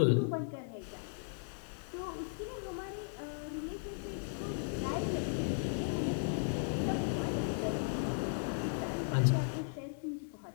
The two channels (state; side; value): silent; right; digital silence